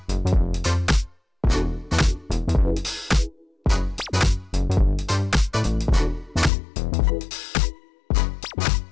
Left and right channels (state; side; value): drops out; right; at 6.5 s